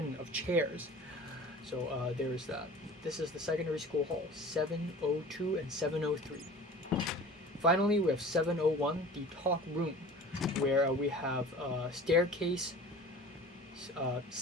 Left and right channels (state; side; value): normal; both; correlation 0.41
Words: of chairs. So there's that. This is the secondary school hall, 702 and 703. Finally, we have 701, the talk room, where we have staircase